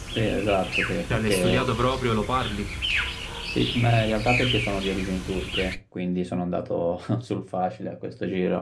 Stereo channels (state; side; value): identical; both; correlation 1.00